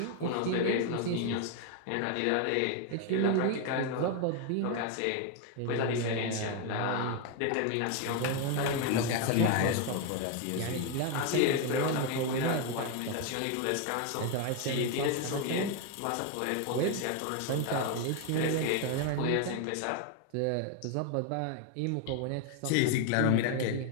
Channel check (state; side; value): different; both; correlation 0.01